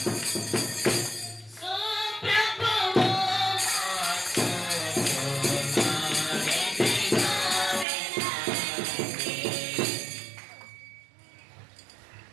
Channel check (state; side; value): drops out; left; at 7.9 s